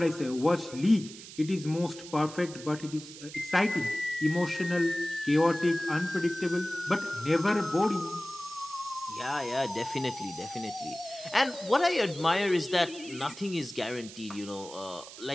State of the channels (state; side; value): noise; right; hiss, 15 dB below the sound